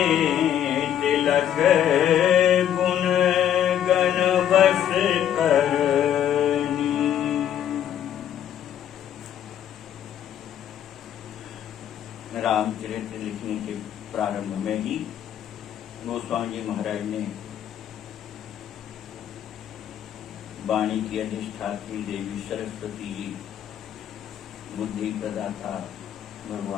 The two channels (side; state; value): right; quieter; 10.2 dB